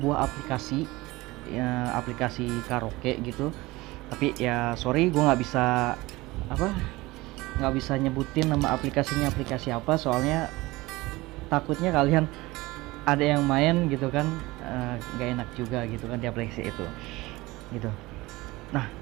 aplikasi ya, aplikasi karaoke gitu. Tapi ya sorry, gue nggak bisa nyebutin nama aplikasinya aplikasi apa, soalnya takutnya kalian ada yang main gitu kan, nggak enak juga gitu kan di aplikasi itu gitu. Nah,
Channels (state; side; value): quieter; left; 20.6 dB